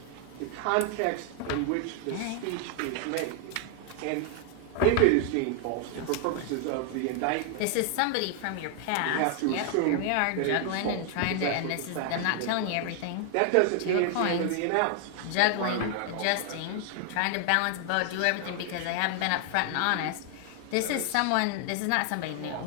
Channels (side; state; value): both; different; correlation 0.00